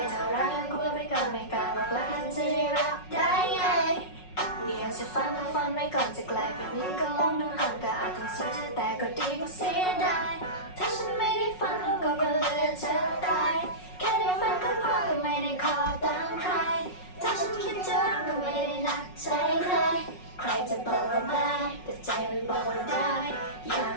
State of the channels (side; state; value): right; late; 5.4 ms